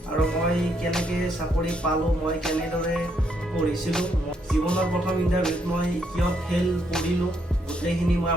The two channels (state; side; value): normal; both; correlation 0.74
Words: আৰু মই কেনেকৈ চাকৰি পালোঁ, মই কেনেদৰে পঢ়িছিলোঁ, জীৱনৰ প্ৰথম ইণ্টাৰভিউত মই কিয় ফেইল কৰিলোঁ, গোটেইখিনি মই